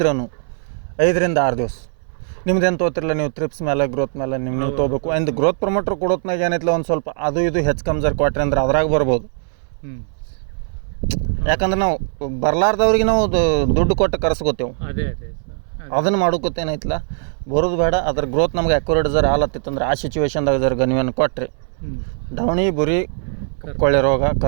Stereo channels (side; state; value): left; silent; 63 dB below the other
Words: 5ರಿಂದ 6 ದಿವಸ ನಿಮ್ದು ಏನು ತೊಗೊತಿರಲ್ಲ ನೀವು ಟ್ರಿಪ್ಸ್ ಮೇಲೆ ಗ್ರೋತ್ ಮೇಲೆ ನೀವು ತೊಗೋಬೇಕು. ಅಂದ್ ಗ್ರೋತ್ ಪ್ರಮೋಟರ್ ಕೊಡೋತ್ನಾಗ ಏನೈತಿಲ್ಲ ಒಂದು ಸ್ವಲ್ಪ ಅದು ಇದು ಹೆಚ್ಚು ಕಮ್ಜರ್ ಕೊಟ್ರಿ ಅಂದ್ರೆ ಅದ್ರಾಗ ಬರ್ಬೋದು. ಯಾಕಂದ್ರೆ ನಾವು ಬರ್ಲಾರ್ದವ್ರಿಗೆ ನಾವು ದುಡ್ಡು ಕೊಟ್ಟು ಕರೆಸ್ಕೋತೇವೆ. ಅದನ್ನು ಮಾಡೋಕತ್ತೇನೈತಿಲ್ಲ ಬರೋದು ಬೇಡ. ಅದ್ರ ಗ್ರೋತ್ ನಮ್ಗೆ ಅಕ್ಯುರೇಟ್ ಜರ ಹಾಲತ್ತಿತ್ತಂದ್ರೆ ಆ ಸಿಚುವೇಶನ್ದಾಗ ಜರ ನೀವೇನು ಕೊಟ್ರಿ ಡವಣಿ ಬುರಿ ಕೊಳ್ಳೆ ರೋಗ